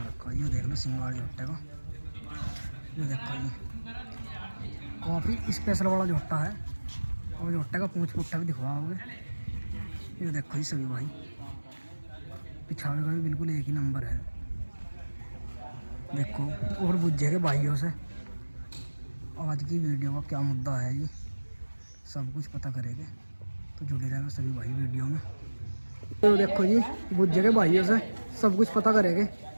रखा है। ये देख लो सिंगार झोटे का। ये देखो जी काफ़ी स्पेशल वाला झोटा है और झोटे का पूंछ पुट्ठा भी दिखवाओगे। ये देखो जी सभी भाई पिछावे का भी बिल्कुल एक ही नंबर है। देखो और बुझे के भाइयों से आज की वीडियो का क्या मुद्दा है जी सब कुछ पता करेंगे। तो जुड़े रहेगा सभी भाई वीडियो में। तो देखो जी बुझे के भाइयों से सब कुछ पता करेंगे।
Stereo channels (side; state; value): both; inverted; correlation -1.00